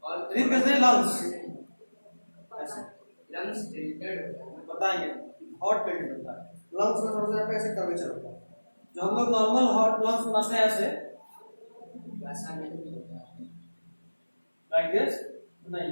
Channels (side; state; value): both; inverted; correlation -1.00